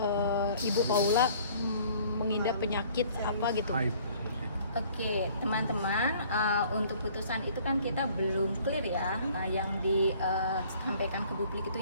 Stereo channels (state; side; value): inverted; both; correlation -0.55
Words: Ibu Paula mengidap penyakit apa gitu. Oke, teman-teman, untuk putusan itu kan kita belum clear ya, yang disampaikan ke publik